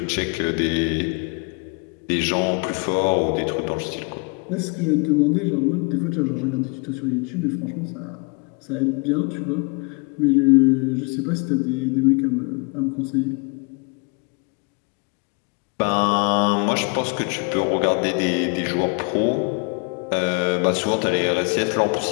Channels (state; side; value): quieter; right; 33.0 dB